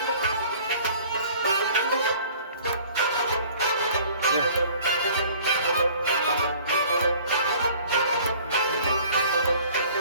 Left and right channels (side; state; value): both; inverted; correlation -0.50